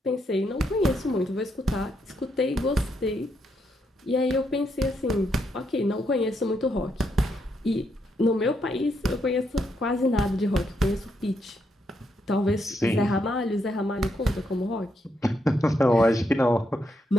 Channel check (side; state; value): both; normal; correlation 0.79